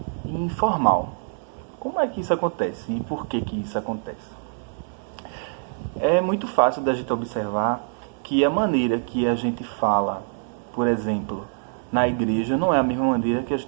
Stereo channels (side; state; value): left; silent; digital silence